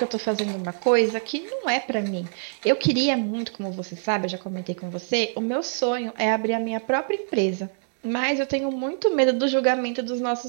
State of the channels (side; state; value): left; silent; digital silence